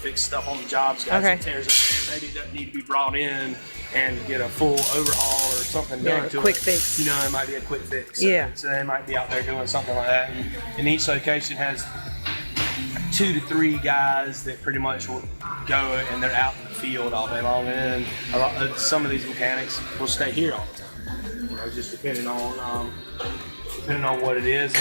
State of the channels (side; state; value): both; inverted; correlation -1.00